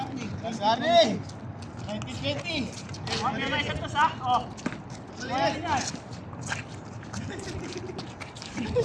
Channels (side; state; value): both; identical; correlation 1.00